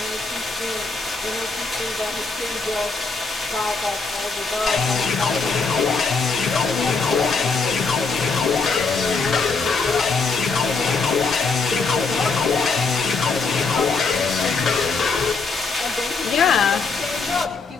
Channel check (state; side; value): quieter; right; 4.4 dB